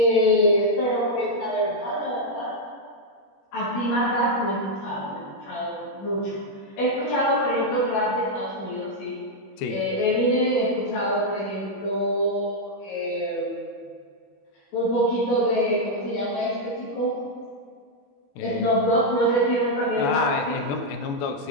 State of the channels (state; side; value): late; right; 21 ms